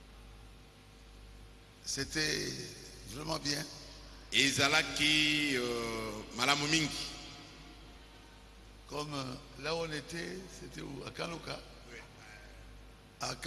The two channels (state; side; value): identical; both; correlation 1.00